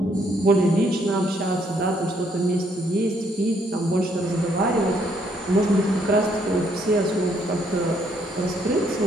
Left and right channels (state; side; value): normal; both; correlation 0.70